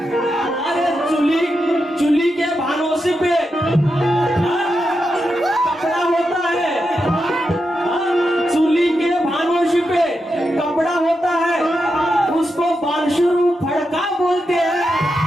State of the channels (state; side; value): normal; both; correlation 0.87